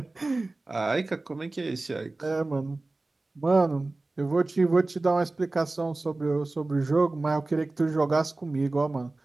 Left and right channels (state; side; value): quieter; left; 3.1 dB